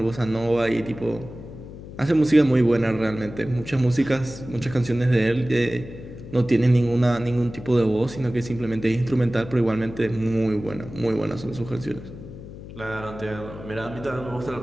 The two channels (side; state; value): left; noise; hum, 14 dB below the sound